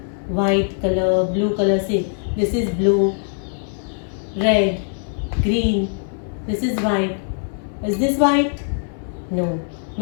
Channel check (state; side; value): silent; right; 59 dB below the other